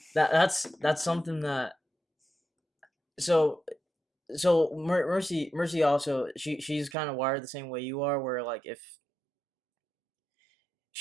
that's something that so Mercy also she's kind of wired the same way you are, where like if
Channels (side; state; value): left; drops out; at 7.0 s